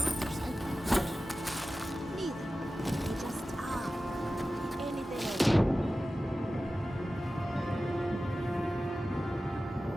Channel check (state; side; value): normal; both; correlation 0.95